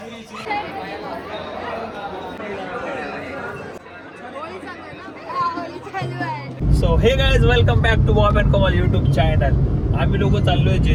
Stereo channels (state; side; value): identical; both; correlation 1.00